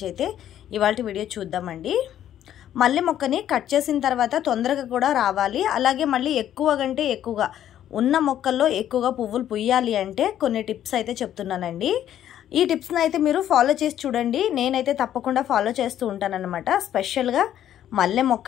అయితే ఇవాల్టి వీడియో చూద్దామండి. మల్లె మొక్కని కట్ చేసిన తర్వాత తొందరగా కూడా రావాలి, అలాగే మళ్ళీ ఎక్కువ కంటే ఎక్కువగా ఉన్న మొక్కల్లో ఎక్కువగా పువ్వులు పుయ్యాలి అంటే కొన్ని టిప్స్ అయితే చెప్తున్నానండి. ఈ టిప్స్ని అయితే మీరు ఫాలో చేసి చూడండి. నేనైతే తప్పకుండా ఫాలో చేస్తూ ఉంటానన్నమాట. స్పెషల్గా మల్లె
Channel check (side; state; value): right; quieter; 11.1 dB